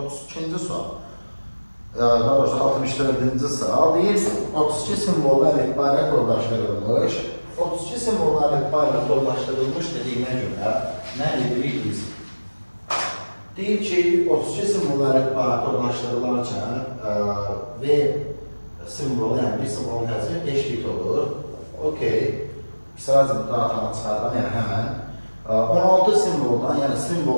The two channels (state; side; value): inverted; both; correlation -1.00